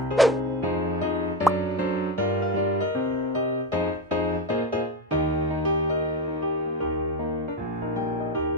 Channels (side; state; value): both; normal; correlation 0.14